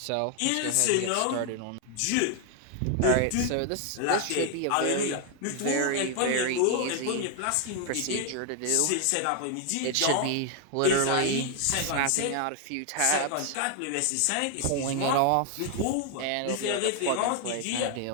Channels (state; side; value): different; both; correlation 0.00